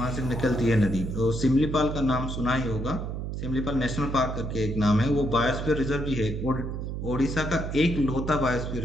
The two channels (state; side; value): noise; right; hum, 5 dB below the sound